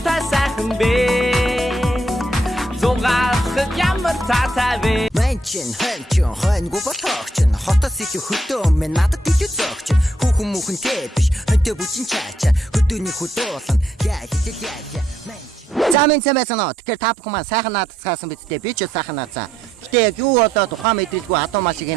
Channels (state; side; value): normal; both; correlation 0.75